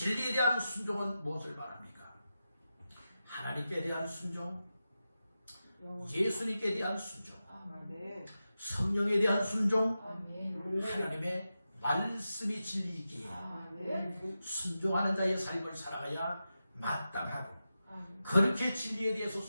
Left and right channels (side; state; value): both; inverted; correlation -0.91